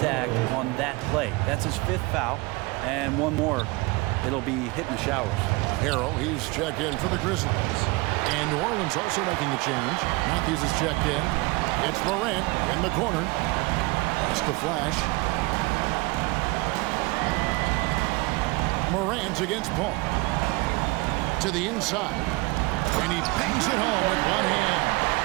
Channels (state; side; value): quieter; left; 24.4 dB